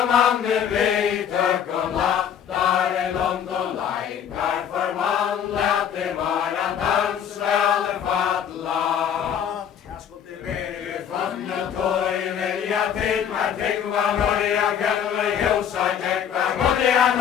mannen vid tök och lattare långt och laikar förvandlat det bara dansväl fadla. Funnet toj vilja till med tyckva norja kälver hjusa täckva godjan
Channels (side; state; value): right; quieter; 8.7 dB